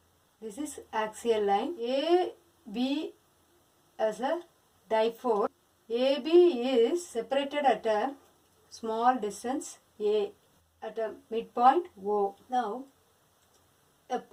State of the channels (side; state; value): both; identical; correlation 1.00